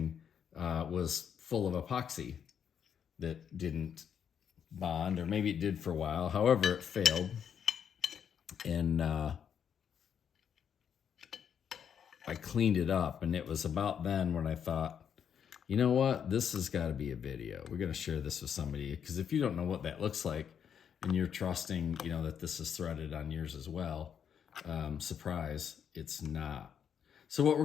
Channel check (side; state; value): right; quieter; 8.1 dB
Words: was full of epoxy that didn't bond, or maybe it did for a while. However, it failed. And I cleaned it up, and it was about then when I thought, you know what, this has got to be a video. We're going to share this with somebody, because if you don't know what that looks like and you're trusting, you know, that this is threaded on yours as well, surprise, it's not. So what